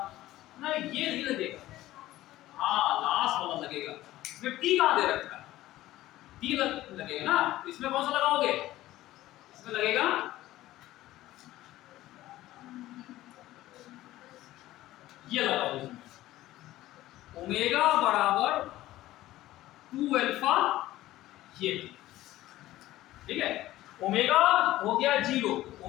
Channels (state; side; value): quieter; right; 15.7 dB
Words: ना, ये नहीं लगेगा, हाँ लास्ट वाला लगेगा। इसमें टी कहां दे रखा है, टी लगेगा ना, तो इसमें कौन सा लगाओगे, इसमें लगेगा ये लगाओ, ओमेगा बराबर 2 अल्फा, ये ठीक है। ओमेगा हो गया 0,